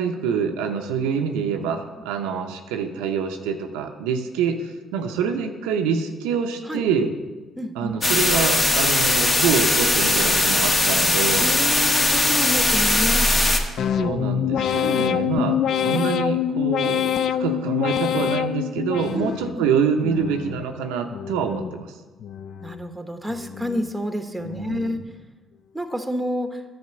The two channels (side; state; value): both; normal; correlation 0.62